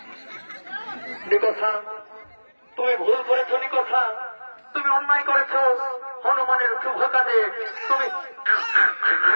নিকোষা, তুমি ভুল করেছো। নিকোষা, তুমি অন্যায় করেছো। হনুমানের শুভ কাজে তুমি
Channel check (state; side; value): inverted; both; correlation -1.00